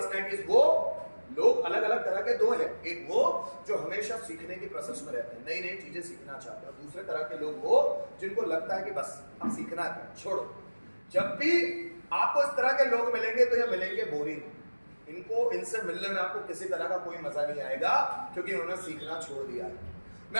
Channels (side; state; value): both; inverted; correlation -1.00